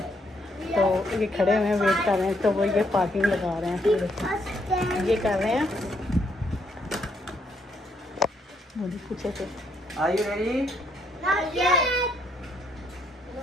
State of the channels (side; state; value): both; normal; correlation 0.73